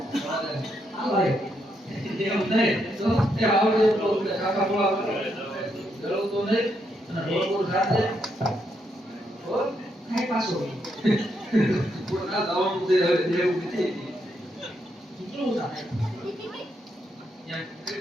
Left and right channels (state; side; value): normal; both; correlation 0.78